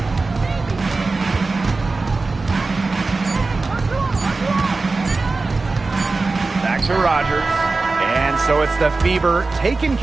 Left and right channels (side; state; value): left; quieter; 3.7 dB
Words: Back to Rogers. And so it's the Fever taking